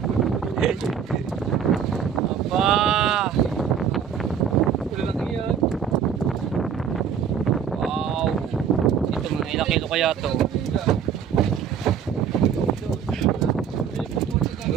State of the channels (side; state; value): left; quieter; 7.7 dB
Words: Aba. Lalaki yan. Wow. Ito mga ilang kilo kaya to.